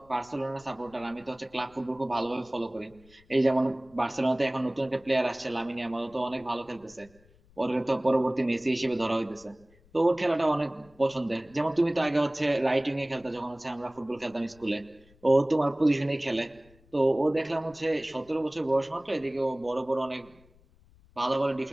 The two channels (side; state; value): left; noise; rumble, 29 dB below the sound